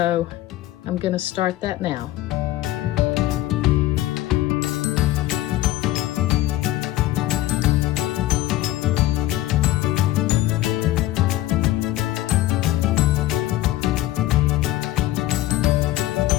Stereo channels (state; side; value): quieter; right; 15.5 dB